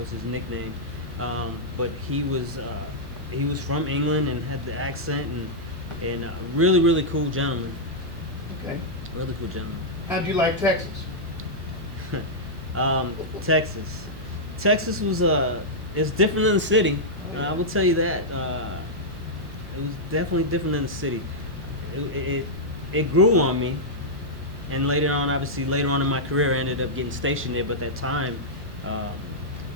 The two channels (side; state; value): right; noise; hum, 14 dB below the sound